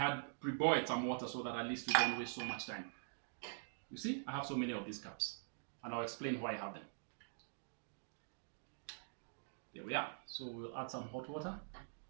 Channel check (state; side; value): silent; left; digital silence